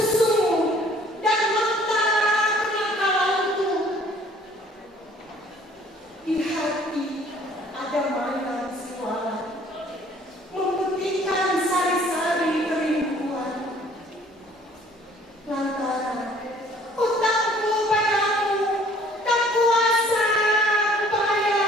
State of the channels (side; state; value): both; normal; correlation 0.56